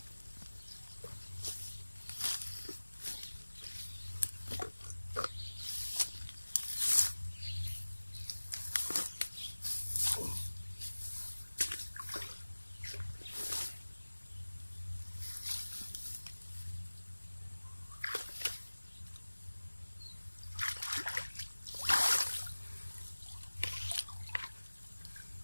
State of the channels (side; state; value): both; inverted; correlation -1.00